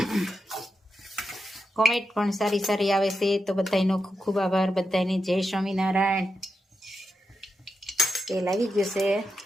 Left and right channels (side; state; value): both; normal; correlation 0.87